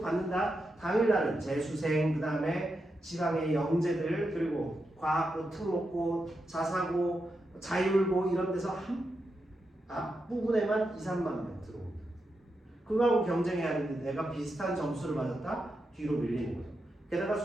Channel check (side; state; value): both; normal; correlation 0.86